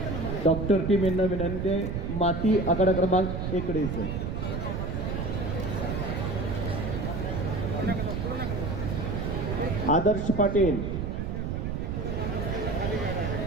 डॉक्टर टीम यांना विनंती आहे, माती आकडा क्रमांक 1 कडे यायचं. आदर्श पाटील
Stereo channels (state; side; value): noise; right; rumble, 2 dB below the sound